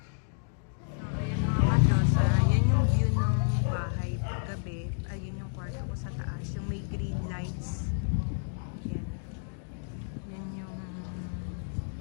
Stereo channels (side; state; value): right; silent; digital silence